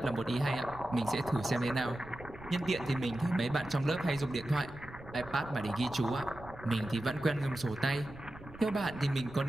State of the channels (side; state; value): right; noise; rumble, 17 dB below the sound